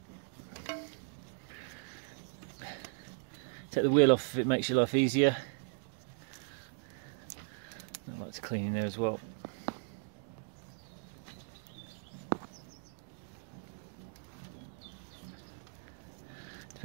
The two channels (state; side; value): silent; left; digital silence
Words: wheel off if it makes your life easier. I like to clean in there as well.